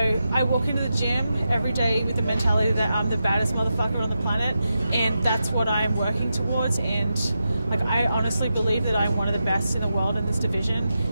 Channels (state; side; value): inverted; both; correlation -0.88